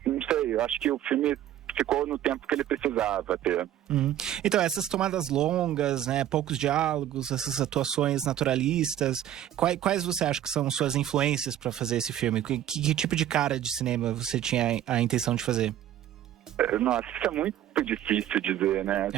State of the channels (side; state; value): left; quieter; 11.7 dB